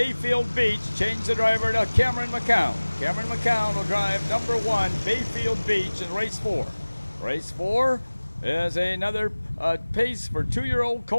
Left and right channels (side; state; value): both; inverted; correlation -1.00